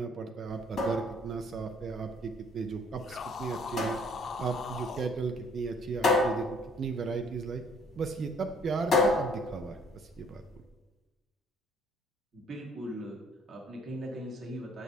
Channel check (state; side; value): normal; both; correlation 0.59